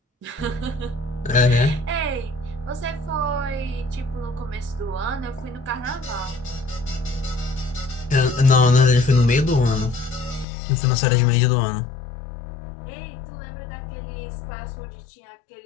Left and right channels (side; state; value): right; drops out; at 10.5 s